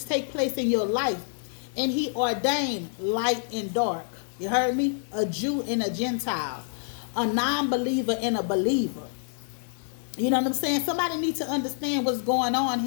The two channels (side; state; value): right; silent; digital silence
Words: take place in your life. And he ordained light and dark. You heard me? A Jew and a Gentile. A non-believer and a believer. You know what I'm saying? Somebody needs to understand what's going on